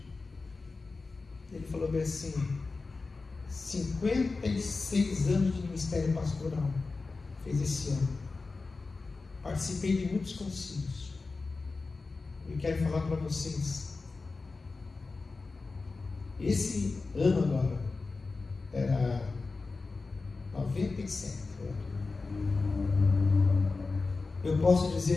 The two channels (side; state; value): right; quieter; 3.9 dB